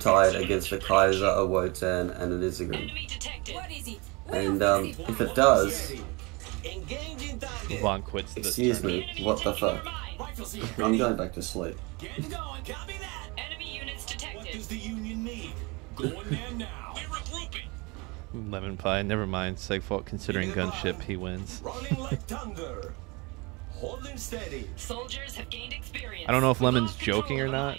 against a Kaiser, a Wotan, and an Izigram? Enemy detected. And if it does, Engaging Vaughn quits the excuse turn. me, what the fuck? I'm going back to sleep. Getting going. Copy that. Enemy units What detected. does the Union need? Going there now. We're regrouping. LemonPi, never mind. Segfault considering gunship, he wins. Running like thunder. Holding steady. Soldiers have gained experience. I don't know if Lemon's joking or not,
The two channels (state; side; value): quieter; left; 27.0 dB